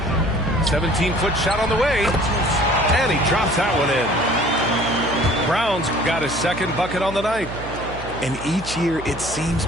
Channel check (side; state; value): right; noise; hum, 13 dB below the sound